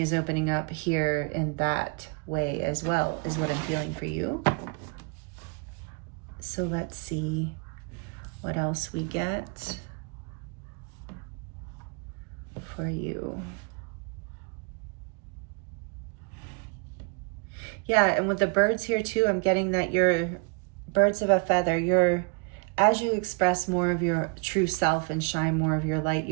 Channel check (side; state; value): left; quieter; 33.0 dB